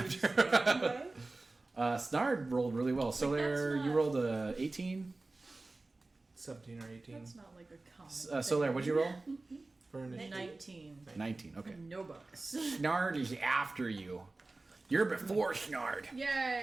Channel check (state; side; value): quieter; left; 3.2 dB